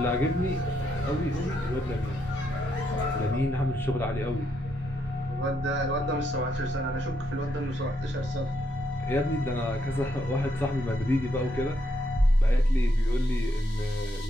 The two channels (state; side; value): normal; both; correlation 0.77